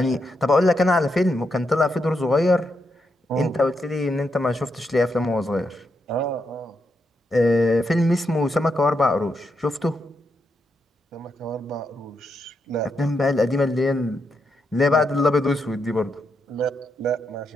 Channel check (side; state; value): both; normal; correlation 0.82